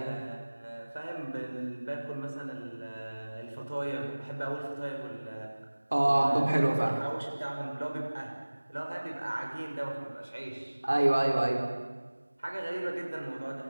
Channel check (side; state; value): both; inverted; correlation -1.00